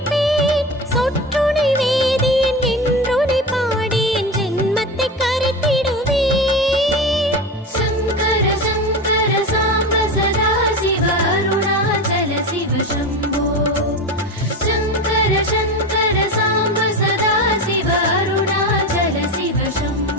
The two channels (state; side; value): normal; both; correlation 0.25